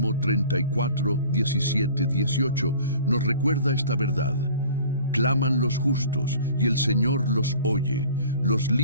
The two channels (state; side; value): inverted; both; correlation -0.46